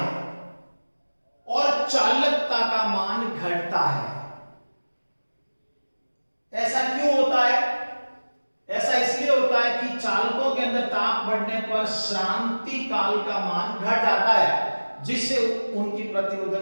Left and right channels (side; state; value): both; inverted; correlation -1.00